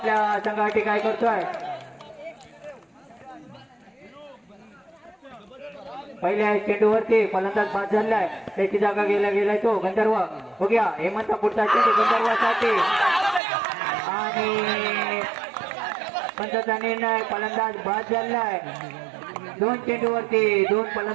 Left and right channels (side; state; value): left; drops out; at 13.4 s